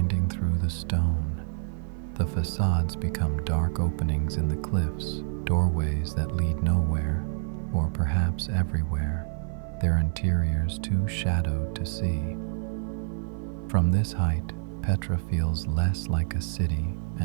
through the stone. The facades become dark openings in the cliffs, doorways that lead nowhere, or perhaps everywhere, their interiors too shadowed to see. From this height, Petra feels less like a city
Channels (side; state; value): left; silent; 60 dB below the other